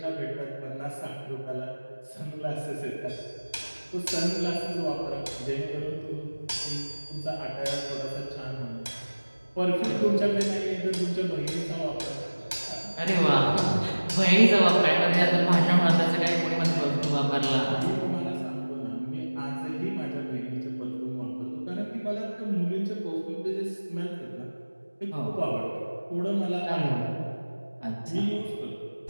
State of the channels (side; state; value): both; inverted; correlation -1.00